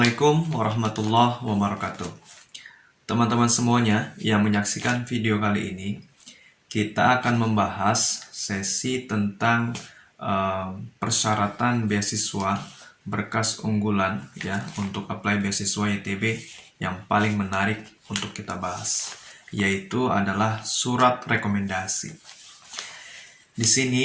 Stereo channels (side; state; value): both; identical; correlation 1.00